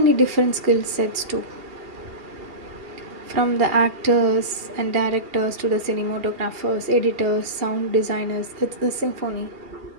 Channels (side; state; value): left; late; 2.7 ms